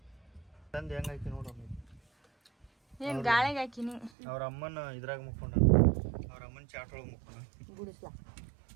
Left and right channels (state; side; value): drops out; left; at 4.1 s